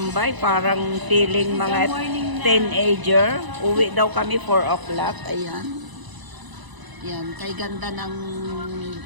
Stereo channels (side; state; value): left; late; 1.0 ms